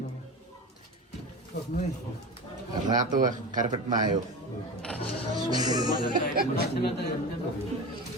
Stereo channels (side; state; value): both; normal; correlation 0.27